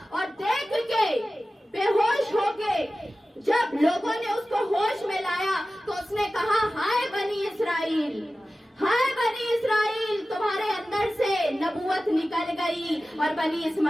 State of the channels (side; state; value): both; normal; correlation 0.95